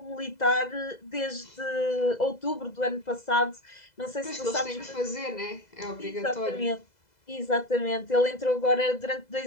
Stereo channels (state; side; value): late; right; 2.0 ms